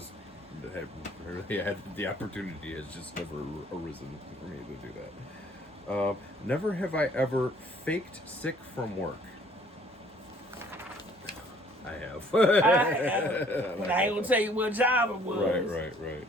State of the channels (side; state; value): both; normal; correlation 0.58